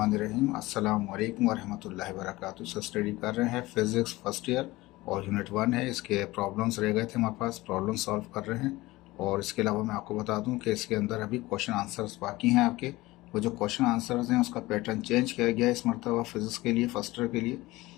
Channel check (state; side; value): quieter; right; 19.4 dB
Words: अस्सलाम वालेकुम वरहमतुल्लाहि वबरकातुहू। सर स्टडी कर रहे हैं फिज़िक्स फर्स्ट ईयर और यूनिट 1 है। इसके प्रॉब्लम्स रह गए थे हमारे पास, प्रॉब्लम सॉल्व कर रहे हैं। और इसके अलावा मैं आपको बता दूं कि इसके अंदर अभी क्वेश्चन आंसर्स बाकी हैं आपके। वो जो क्वेश्चन आंसर्स हैं उसका पैटर्न चेंज किया गया है इस मरतबा फिज़िक्स के लिए, फर्स्ट ईयर के लिए।